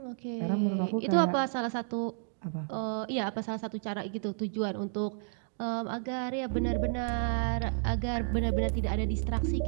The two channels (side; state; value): left; silent; digital silence